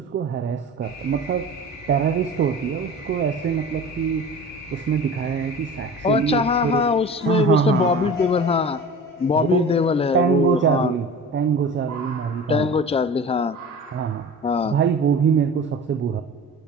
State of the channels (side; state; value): both; normal; correlation 0.37